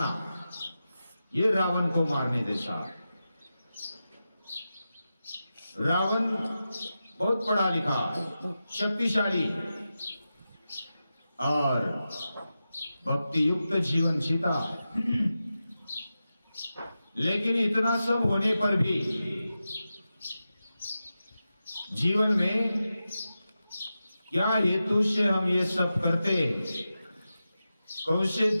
ये रावण को मारने जैसा। रावण बहुत पढ़ा लिखा, शक्तिशाली और भक्ति युक्त जीवन जीता है, लेकिन इतना सब होने पर भी जीवन में क्या हेतु से हम ये सब करते, कौन से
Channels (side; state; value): both; inverted; correlation -0.92